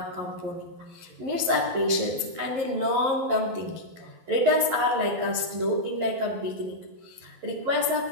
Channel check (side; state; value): left; late; 11 ms